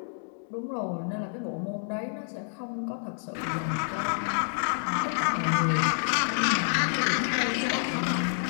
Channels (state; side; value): silent; right; digital silence